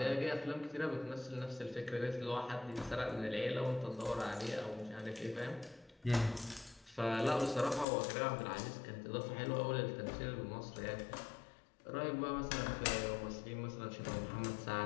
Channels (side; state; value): right; drops out; at 7.9 s